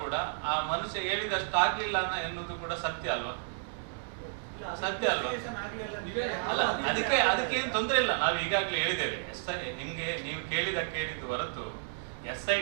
ಕೂಡ ಆ ಮನುಷ್ಯ ಹೇಳಿದಷ್ಟು ಆಗ್ಲಿಲ್ಲ ಎನ್ನುವುದು ಕೂಡ ಸತ್ಯ ಅಲ್ವಾ? ಸತ್ಯ ಅಲ್ವಾ? ಅಲ್ಲ, ಅದಕ್ಕೆ ಏನು ತೊಂದರೆ ಇಲ್ಲ. ನಾವು ಈಗಾಗಲೇ ಹೇಳಿದ್ದೇವೆ. ನಿಮ್ಗೆ ನೀವು ಕೇಳಿದ್ದು ಹೊರತು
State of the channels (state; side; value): silent; left; digital silence